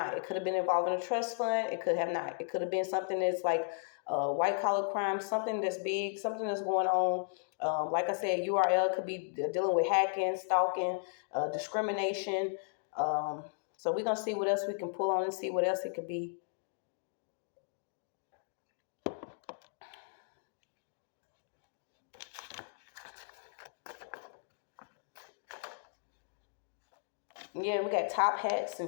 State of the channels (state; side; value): silent; right; digital silence